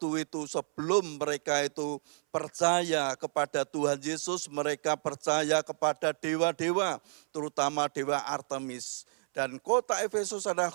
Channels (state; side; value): silent; left; 57 dB below the other